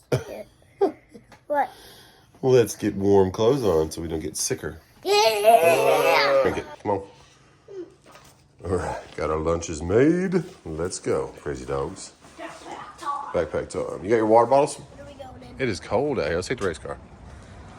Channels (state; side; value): identical; both; correlation 1.00